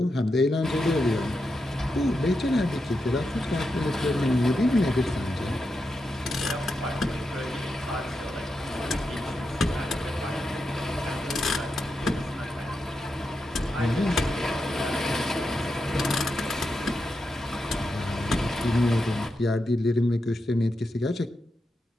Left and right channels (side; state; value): both; normal; correlation 0.87